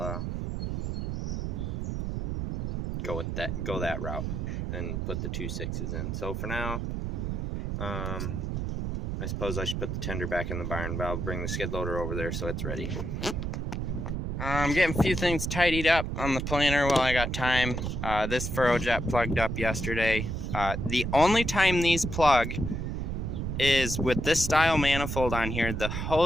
go that route and put the 2 6s in. So for now, I suppose I should put the tender back in the barn, but I'll bring the skid loader over there so it's ready. I'm getting a few things tidied up on the planter while I got time. This furrow jet plugged up yesterday. The only time these plug is with this style manifold on here. The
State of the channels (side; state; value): right; noise; rumble, 3 dB below the sound